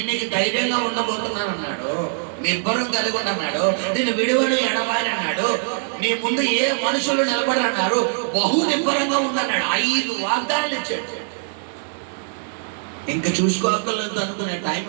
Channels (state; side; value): silent; left; digital silence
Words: నీకు ధైర్యంగా ఉండబోతున్నాను అన్నాడు, నిబ్బరం కలిగి ఉండన్నాడు, నేను విడువను ఎడబాయని అన్నాడు, నీ ముందు ఏ మనుషులు నిలబడరన్నారు, బహు నిబ్బరంగా ఉండన్నాడు. 5 వాగ్దానాలు ఇచ్చాడు. ఇంకా చూసుకోగలదు అనుకునే